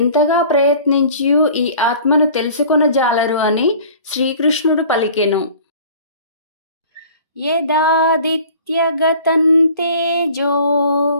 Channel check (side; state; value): both; inverted; correlation -0.47